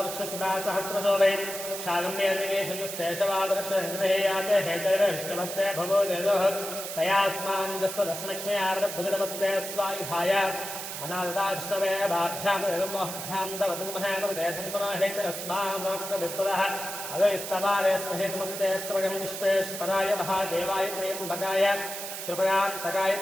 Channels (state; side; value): noise; right; hiss, 7 dB below the sound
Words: वृक्षसुधा सहस्रशोभे शागम्येशवादर्शे याते हेतैरष्टमस्ते भवो देवः तयास्मान् जस्वदस्मक्ष्मयार्भुजनमस्ते स्वायुधाय अनाददाष्टवे बाभ्यां तवदुमहेतरस्मात्मविस्पदः अवैस्तवारे स्महेतुमस्ते स्त्रगं विश्वेश्वराय महादेवाय त्र्यम्बकाय कृपयान्तकाय